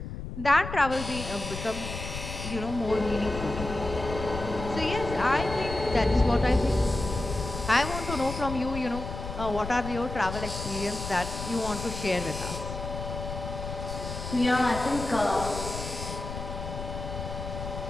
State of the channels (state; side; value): noise; left; rumble, 7 dB below the sound